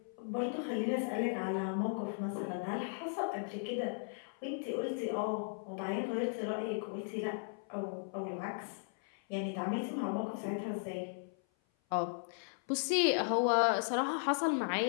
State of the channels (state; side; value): silent; right; 53 dB below the other